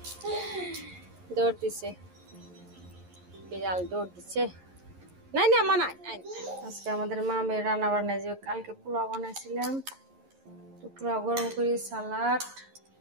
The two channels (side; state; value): left; late; 11 ms